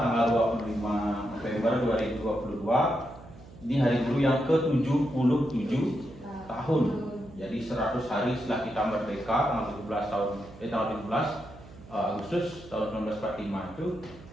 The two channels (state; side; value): noise; right; hum, 19 dB below the sound